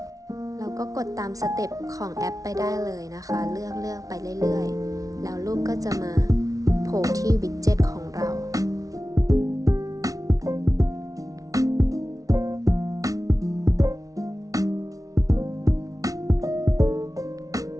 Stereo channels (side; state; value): left; late; 0.17 ms